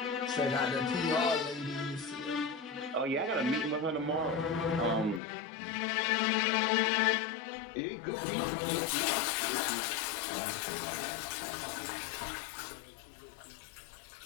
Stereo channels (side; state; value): right; drops out; at 5.2 s